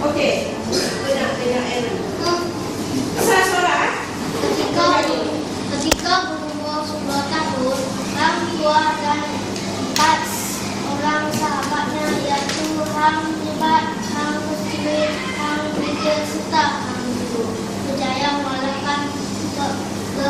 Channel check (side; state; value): both; identical; correlation 1.00